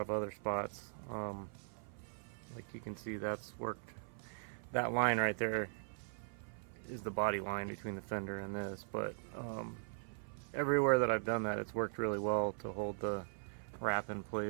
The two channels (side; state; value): left; silent; 51 dB below the other